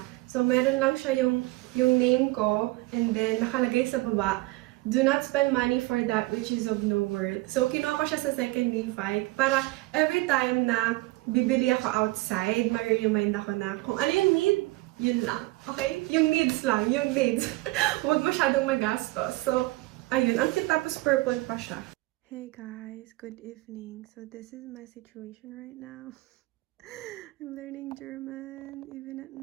So, meron lang siya yung name ko. And then, nakalagay sa baba, do not spend money for that which is of no worth. So, kinuha ko siya sa second Levi para every time na bibili ako outside, ma-remind ako na kung ano yung need, yun lang. Okay? Yung needs lang. Yung needs. Huwag masyadong magastos. So, ayun. Ang cute tapos purple pa siya. Hey guys. Good evening. So, this is my situation right now. I'm learning German even at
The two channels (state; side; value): quieter; left; 21.0 dB